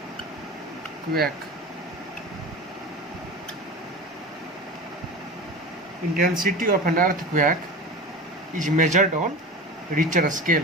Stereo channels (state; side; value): normal; both; correlation 0.31